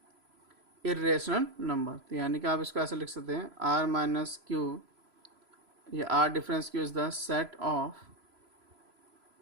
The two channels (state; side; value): late; left; 3.0 ms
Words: इरेशनल नंबर। तो यानी कि आप इसको ऐसे लिख सकते हैं r माइनस क्यू, ये r difference Q is the set of